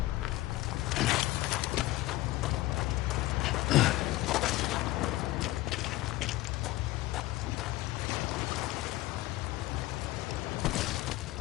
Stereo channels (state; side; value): quieter; right; 17.8 dB